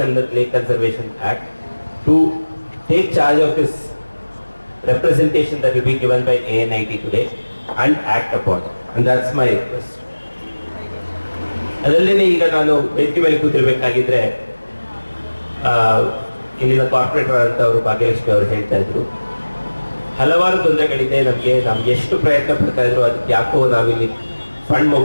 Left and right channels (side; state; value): both; inverted; correlation -1.00